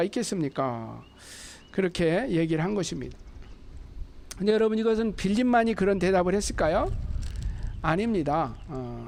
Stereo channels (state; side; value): identical; both; correlation 1.00